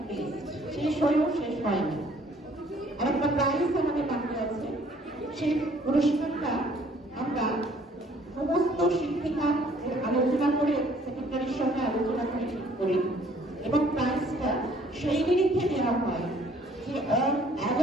list, শেষ হয়েও শেষ হয়নি। আর একটা প্রাইজ আমাদের বাকি আছে। সেই পুরস্কারটা আমরা সমস্ত শিক্ষিকা আলোচনা করে, সেক্রেটারির সঙ্গে আলোচনা করে ঠিক করি, এবং প্রাইজটা সেই নিরিখে দেওয়া হয় যে অল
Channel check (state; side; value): normal; both; correlation 0.59